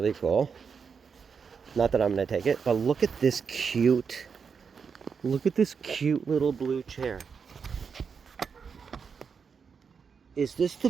cool. Not that I'm going to take it, but look at this cute little blue chair. Is this the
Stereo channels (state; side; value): quieter; left; 6.0 dB